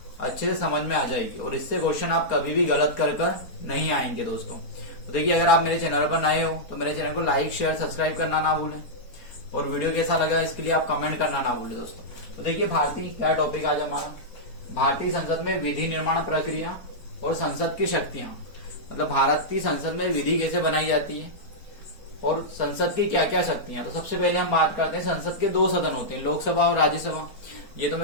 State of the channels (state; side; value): late; right; 4.2 ms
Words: अच्छे से समझ में आ जाएगी और इससे क्वेश्चन आप कभी भी गलत कर नहीं आएंगे दोस्तों। तो देखिए, अगर आप मेरे चैनल पर नए हो तो मेरे चैनल को लाइक, शेयर, सब्सक्राइब करना ना भूलें और वीडियो कैसा लगा इसके लिए आप कमेंट करना ना भूलें दोस्तों। तो देखिए, भारतीय क्या टॉपिक आज हमारा, भारतीय संसद में विधि निर्माण प्रक्रिया और संसद की शक्तियां। मतलब भारतीय संसद में विधि कैसे बनाई जाती है और संसद की क्या क्या शक्तियां। तो सबसे पहले हम बात करते हैं, संसद के दो सदन होते हैं, लोकसभा और राज्यसभा। ये तो